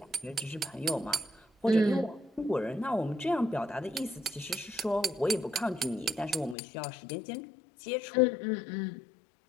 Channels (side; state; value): right; drops out; at 6.6 s